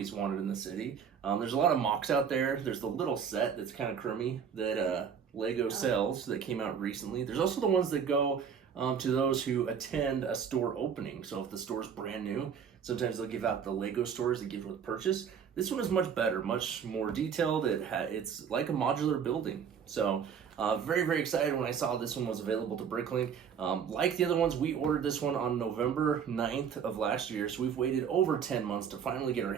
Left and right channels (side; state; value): left; quieter; 7.4 dB